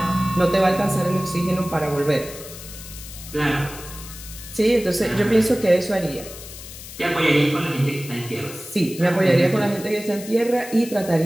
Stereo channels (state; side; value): noise; left; hiss, 14 dB below the sound